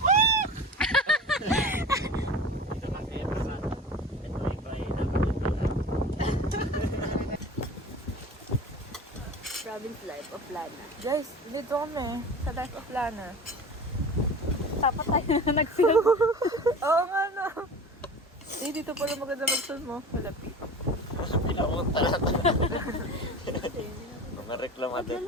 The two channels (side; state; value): both; normal; correlation 0.35